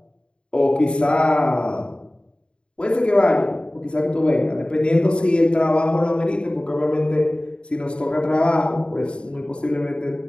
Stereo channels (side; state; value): right; late; 0.054 ms